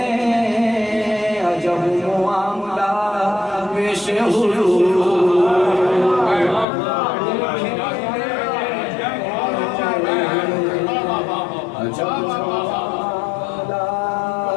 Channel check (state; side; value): drops out; right; at 6.7 s